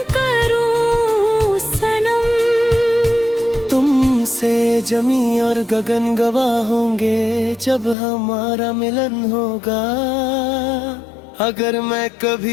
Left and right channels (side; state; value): right; drops out; at 8.0 s